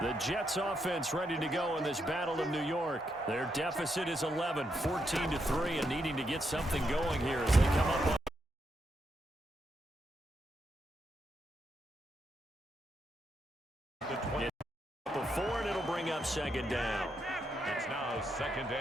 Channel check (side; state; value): both; normal; correlation 0.81